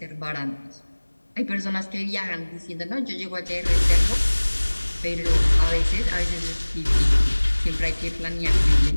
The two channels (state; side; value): inverted; both; correlation -1.00